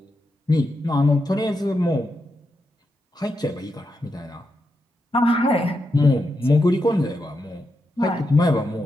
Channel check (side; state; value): both; normal; correlation 0.85